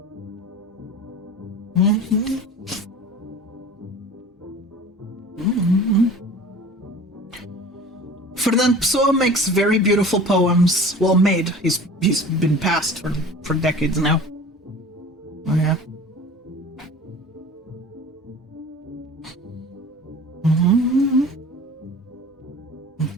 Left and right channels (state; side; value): normal; both; correlation 0.41